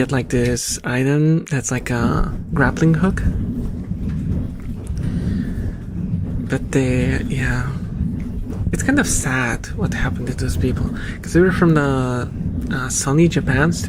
like this item that's like a grappling hook. But yeah, it's kind of sad what happened to those people, because they were from the Sony Japan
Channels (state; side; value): identical; both; correlation 1.00